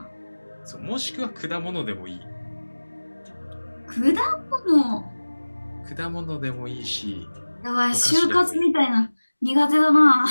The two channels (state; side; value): inverted; both; correlation -1.00